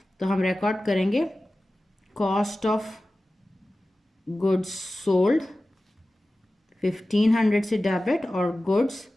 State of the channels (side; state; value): both; normal; correlation 0.96